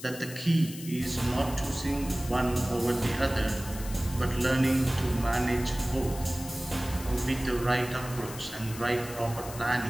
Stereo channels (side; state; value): left; noise; hiss, 13 dB below the sound